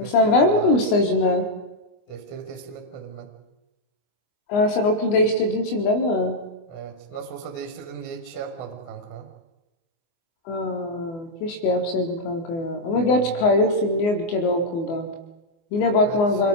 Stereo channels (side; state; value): right; late; 24 ms